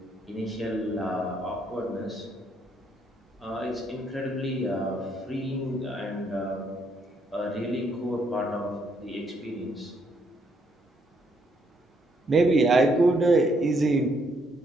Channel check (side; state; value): both; normal; correlation 0.72